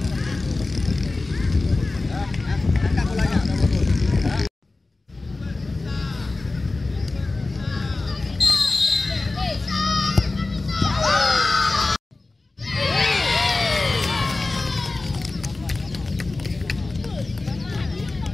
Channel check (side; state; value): right; quieter; 3.3 dB